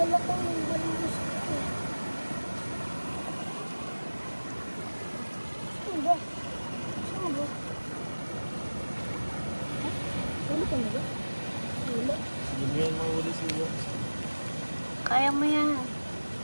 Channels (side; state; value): both; inverted; correlation -1.00